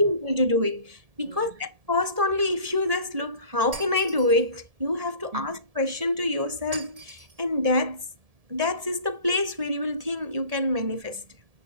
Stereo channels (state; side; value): late; left; 1.7 ms